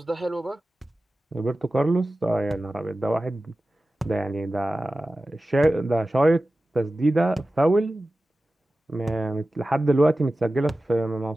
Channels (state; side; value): normal; both; correlation 0.95